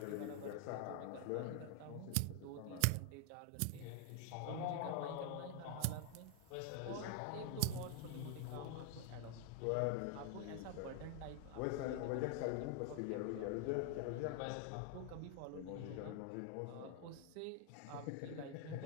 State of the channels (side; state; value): both; different; correlation 0.00